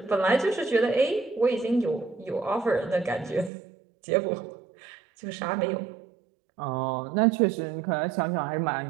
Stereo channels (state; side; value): drops out; left; at 3.5 s